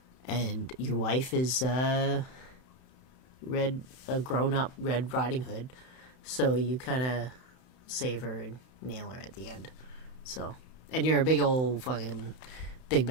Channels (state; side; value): late; right; 31 ms